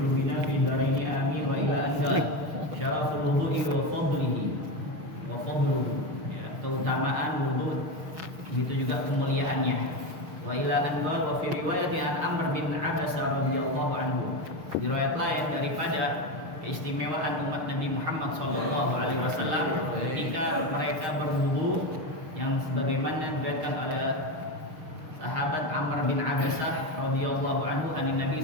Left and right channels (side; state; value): left; late; 6.5 ms